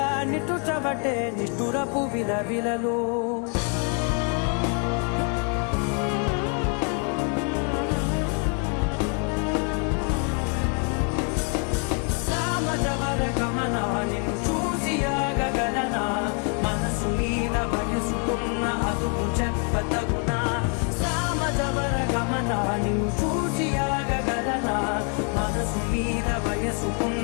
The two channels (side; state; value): right; quieter; 39.4 dB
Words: నిట్టుచబట్టే నిష్ఠురపు విలవిలలు. నిన్ను చూసి ఆగగలనా, మనసు మీద వయసుకున్న అదుపు చెప్పతగునా. సామజవర గమన నిన్ను చూసి ఆగగలనా, మనసు మీద